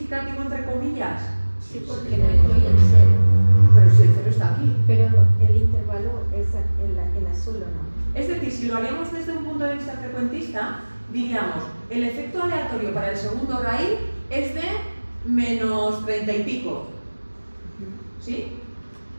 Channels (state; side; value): inverted; both; correlation -1.00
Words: entre comillas? Sí, porque no incluye el 0. Pero si el cero está aquí. Pero el intervalo es el azul, ¿o no? Es decir, si lo haríamos desde un punto de vista frecuentista, diríamos, el efecto aleatorio para el segundo raíz es de menos 30 y pico. ¿Sí?